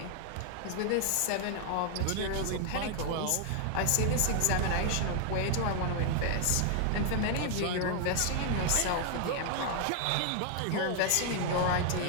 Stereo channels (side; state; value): both; different; correlation 0.00